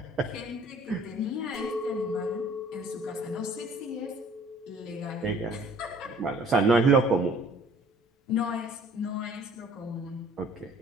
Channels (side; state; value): both; normal; correlation 0.54